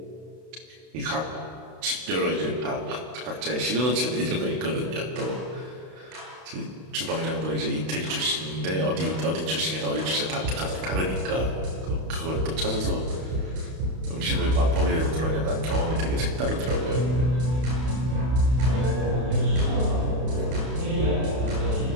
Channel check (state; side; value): late; left; 32 ms